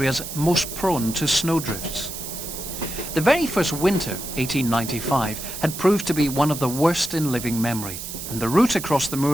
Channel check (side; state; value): right; noise; hiss, 8 dB below the sound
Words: most prone to snowdrifts. The very first winter, 1895, had proved to be one of the worst in living memory, and the route across the